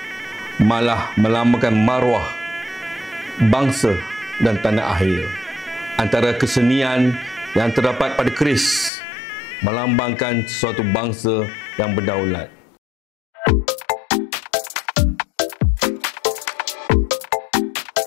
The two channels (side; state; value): right; drops out; at 8.9 s